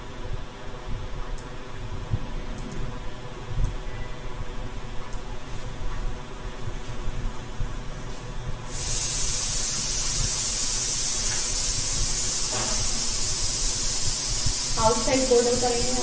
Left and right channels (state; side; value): identical; both; correlation 1.00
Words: outside border करेंगे यहाँ